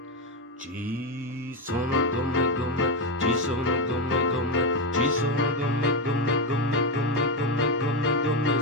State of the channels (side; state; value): both; normal; correlation 0.08